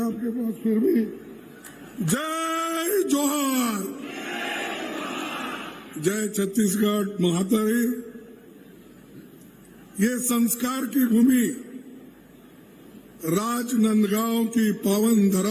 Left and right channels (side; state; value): both; identical; correlation 1.00